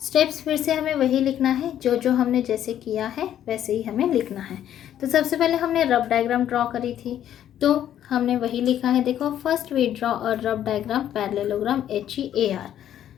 फिर से हमें वही लिखना है, जो हमने जैसे किया है वैसे ही हमें लिखना है। तो सबसे पहले हमने रफ डायग्राम ड्रॉ करी थी तो हमने वही लिखा है। देखो, first we draw a rough diagram parallelogram HEAR।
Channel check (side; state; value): right; quieter; 10.9 dB